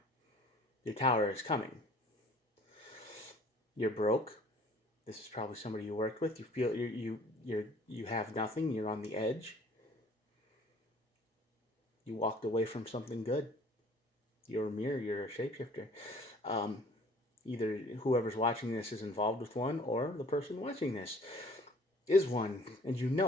Your tower is coming. You're broke. This is probably somebody you worked with. You feel you have nothing. You're on the edge. You walked away from something good. You're a mirror. You're a shapeshifter. Either whoever's watching this is involved with one, or the person watching this is one, and you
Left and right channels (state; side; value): normal; both; correlation 0.53